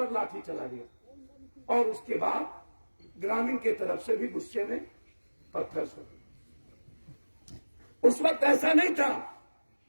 लाठी चला गया। और उसके बाद ग्रामीण के तरफ से भी गुस्से में पत्थर से। उस वक्त ऐसा नहीं था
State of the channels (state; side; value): inverted; both; correlation -1.00